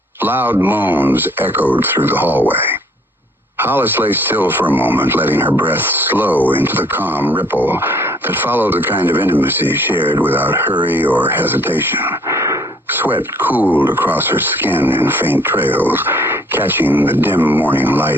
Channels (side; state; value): both; normal; correlation 0.60